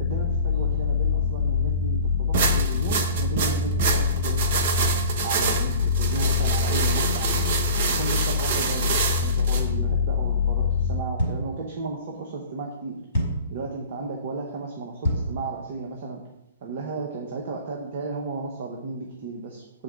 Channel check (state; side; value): inverted; both; correlation -0.40